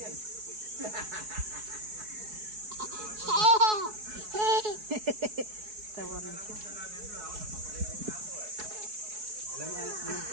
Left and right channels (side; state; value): left; late; 4.7 ms